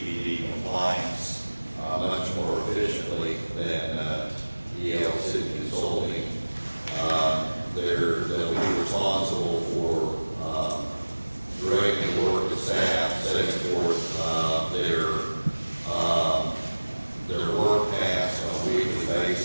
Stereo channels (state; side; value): inverted; both; correlation -1.00